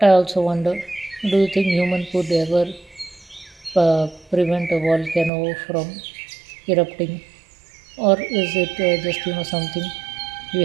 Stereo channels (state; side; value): drops out; left; at 5.3 s